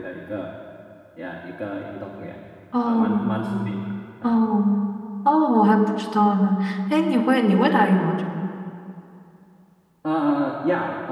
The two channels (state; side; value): identical; both; correlation 1.00